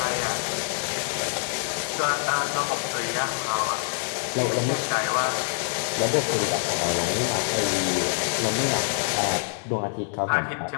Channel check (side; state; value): right; silent; 61 dB below the other